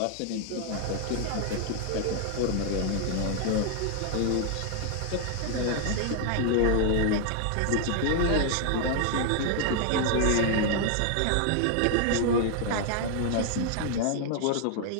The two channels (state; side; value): different; both; correlation 0.00